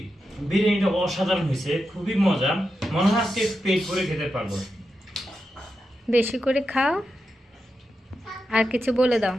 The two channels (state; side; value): normal; both; correlation 0.88